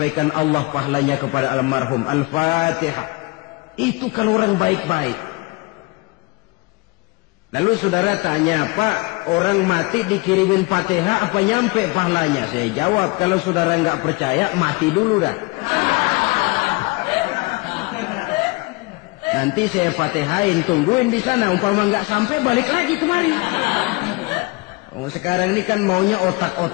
Allah pahalanya kepada almarhum. Al-Fatihah. Itu kalau orang baik-baik. Lalu saudara tanya, Pak, orang mati dikirimin Fatihah apa nyampe pahalanya? Saya jawab, kalau saudara nggak percaya, mati dulu dah. Nanti saya Fatihain, tungguin di sana. Umpama nggak sampai, balik lagi kemari. Oh, sekarang ini kan maunya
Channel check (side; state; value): right; quieter; 26.0 dB